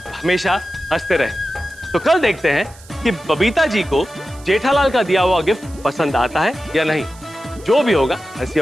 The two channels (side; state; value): right; noise; hiss, 23 dB below the sound